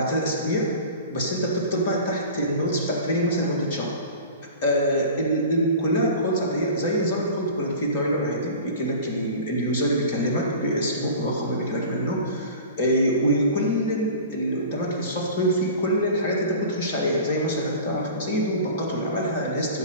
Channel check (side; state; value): both; inverted; correlation -0.38